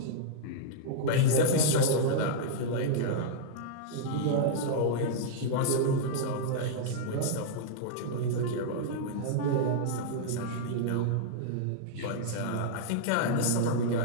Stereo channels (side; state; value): both; different; correlation -0.02